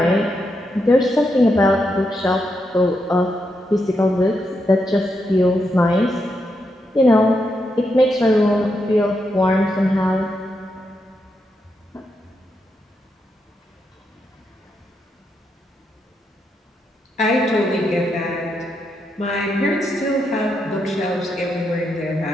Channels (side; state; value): both; normal; correlation 0.83